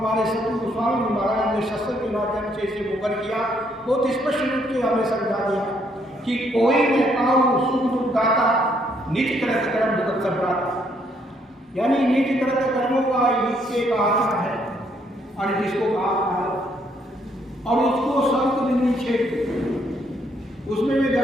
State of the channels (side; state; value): both; normal; correlation 0.70